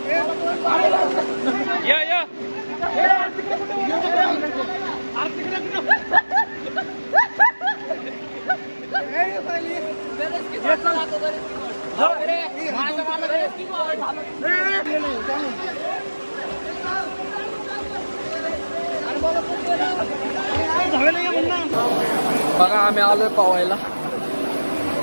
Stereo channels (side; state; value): both; inverted; correlation -1.00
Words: या या बघा आम्ही आलोय पावायला.